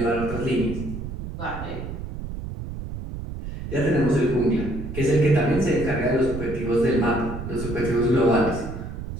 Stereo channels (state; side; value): noise; right; rumble, 8 dB below the sound